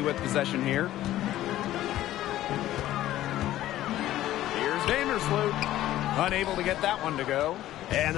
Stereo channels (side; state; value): right; quieter; 14.1 dB